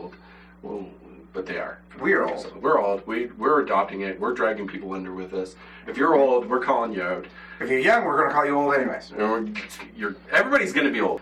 Well, but they are. We're old. So we're old. We're adopting it. We're dragging people under with us. If you're old, we're calling you out. If you're young, we're going to call you old anyways. Everybody's going to be old.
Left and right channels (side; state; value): both; identical; correlation 1.00